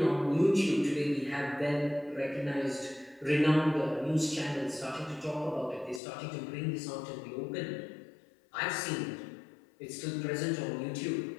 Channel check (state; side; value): drops out; right; at 6.0 s